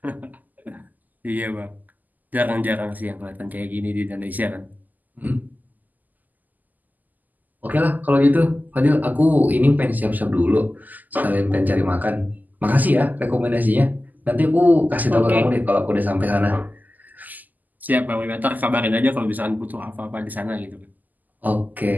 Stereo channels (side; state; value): left; late; 0.083 ms